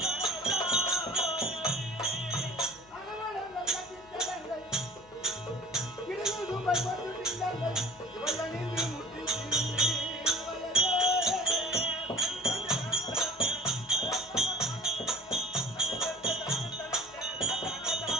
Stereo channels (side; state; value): left; noise; hum, 27 dB below the sound